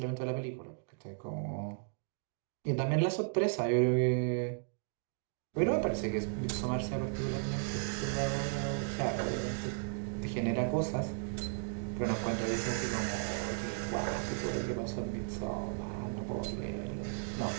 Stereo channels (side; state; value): left; silent; digital silence